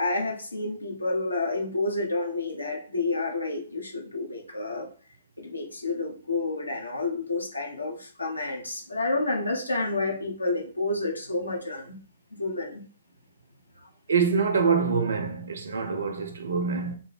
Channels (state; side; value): inverted; both; correlation -0.56